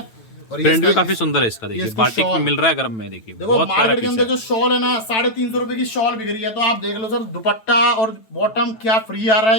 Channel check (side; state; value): right; late; 9.1 ms